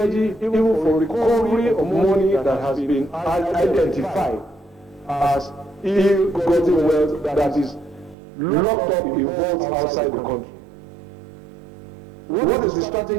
even for recovery of money that has been identified as ill-gotten wealth that is locked up in vaults outside the country. What is the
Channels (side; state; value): left; drops out; at 8.2 s